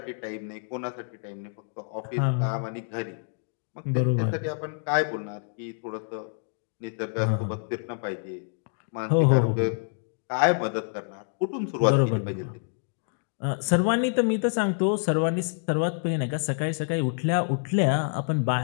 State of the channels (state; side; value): silent; right; digital silence